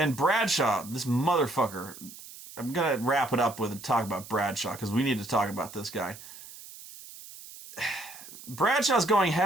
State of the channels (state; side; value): noise; right; hiss, 16 dB below the sound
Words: Bradshaw, this motherfucker... I'm going to wrap it up with a talk about Bradshaw, because we need to talk about this guy. Bradshaw's going